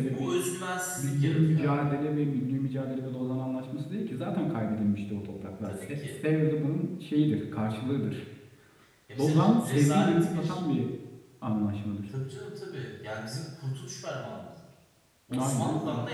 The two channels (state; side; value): identical; both; correlation 1.00